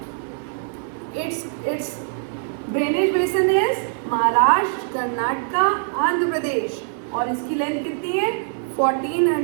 its drainage basin is Maharashtra, Karnataka, Andhra Pradesh, और इसकी लेंथ कितनी है?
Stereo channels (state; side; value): silent; left; digital silence